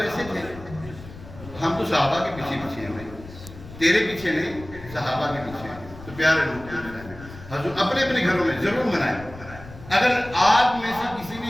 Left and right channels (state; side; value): noise; left; rumble, 16 dB below the sound